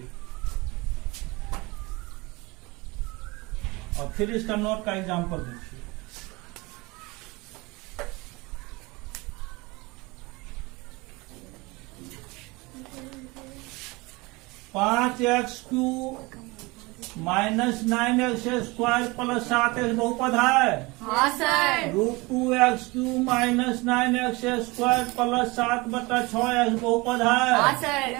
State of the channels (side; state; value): left; quieter; 24.2 dB